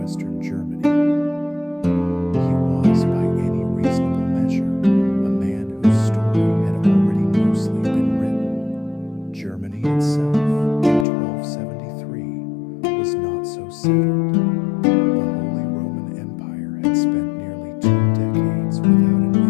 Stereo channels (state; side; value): drops out; right; at 11.1 s